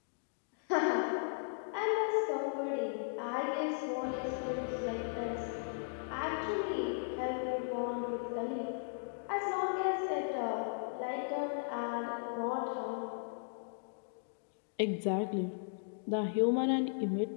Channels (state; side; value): silent; right; digital silence